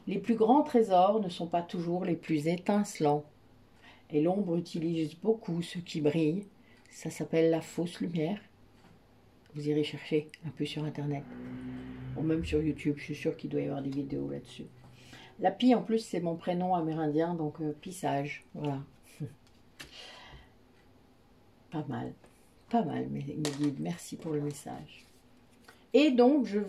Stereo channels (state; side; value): identical; both; correlation 1.00